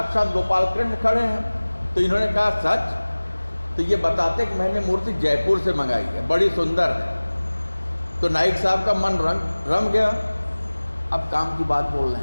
गोपाल कृष्ण खड़े हैं। तो इन्होंने कहा सच। तो ये बताते कि मैंने मूर्ति जयपुर से मंगाई है, बड़ी सुंदर है। तो नाइक साहब का मन रम गया। अब काम की बात बोल रहे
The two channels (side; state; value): both; inverted; correlation -1.00